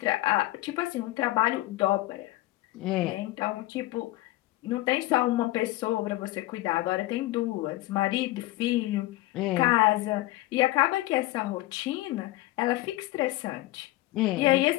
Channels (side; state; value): right; quieter; 18.0 dB